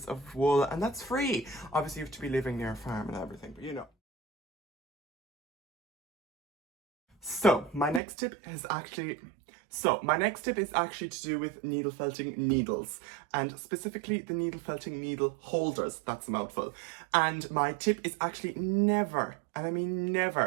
of wool, and that's free. Obviously you have to be living near a farm and everything, but you know. So my next tip is actually to do with needle felting needles, and specifically the needle felting needle holders. That's a mouthful. And my tip is actually never, and I mean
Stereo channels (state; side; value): drops out; left; at 8.0 s